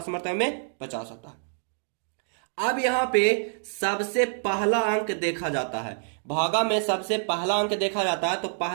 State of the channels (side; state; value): left; silent; digital silence